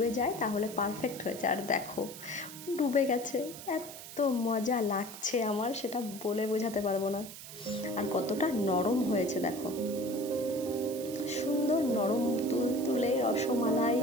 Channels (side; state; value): right; noise; hiss, 13 dB below the sound